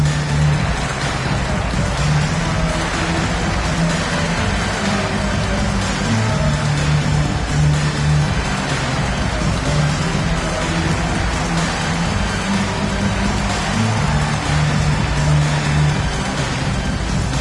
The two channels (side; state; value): both; identical; correlation 1.00